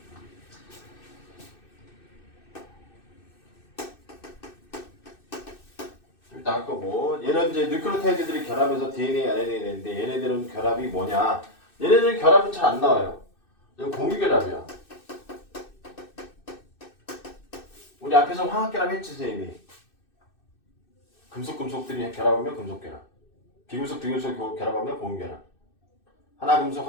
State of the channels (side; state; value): right; late; 2.6 ms